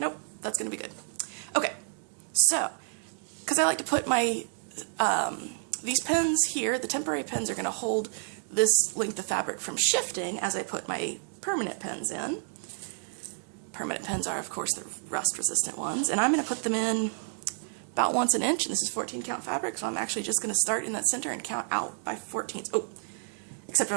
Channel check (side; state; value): left; silent; digital silence